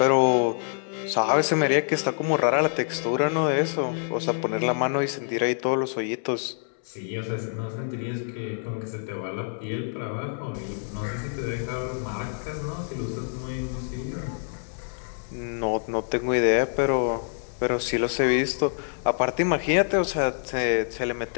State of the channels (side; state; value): right; silent; 61 dB below the other